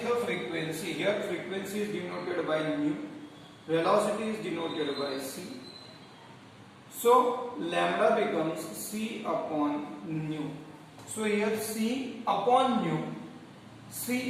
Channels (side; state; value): both; identical; correlation 1.00